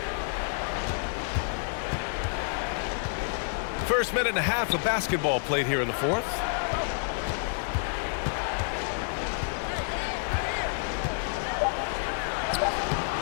First minute and a half of basketball played here in the fourth.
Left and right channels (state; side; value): silent; right; digital silence